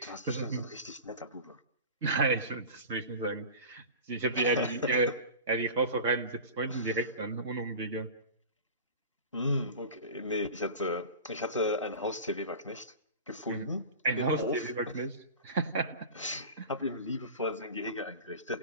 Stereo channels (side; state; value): both; inverted; correlation -0.35